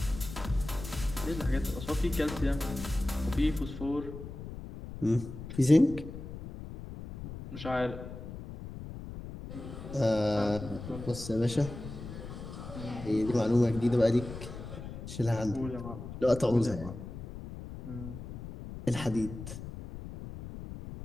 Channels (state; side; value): noise; left; rumble, 10 dB below the sound